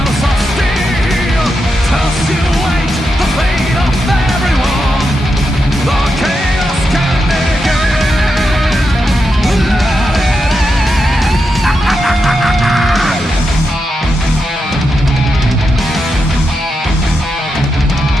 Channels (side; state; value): both; normal; correlation 0.86